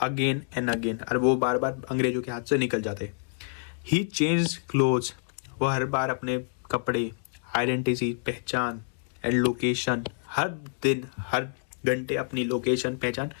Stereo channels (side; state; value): right; silent; digital silence